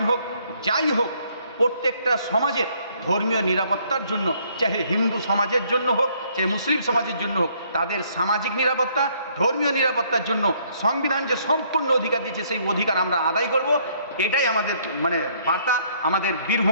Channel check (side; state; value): both; inverted; correlation -0.65